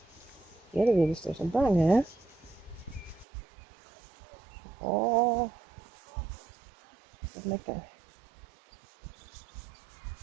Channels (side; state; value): left; drops out; at 3.2 s